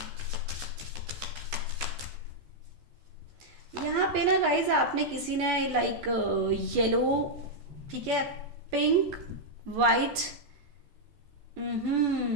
you. यहाँ पे ना गाइज आपने किसी ने लाइक येलो, ठीक है, पिंक, वाइट,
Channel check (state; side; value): late; left; 14 ms